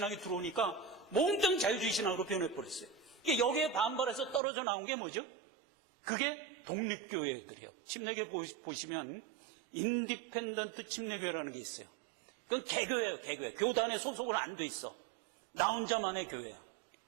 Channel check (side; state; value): left; drops out; at 4.4 s